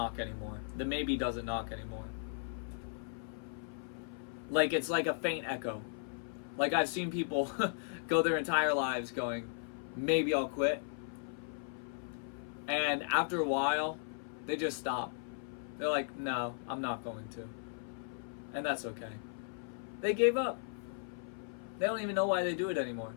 anymore. The maybe doesn't knock anymore. Like, it's like a faint echo. Like, I've seen people go their entire lives going, maybe I'll quit. And after a while, they just stop. They're like, no, I'm not going to. And that's okay. They gave up. They don't even know why they do it anymore.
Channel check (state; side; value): silent; right; 53 dB below the other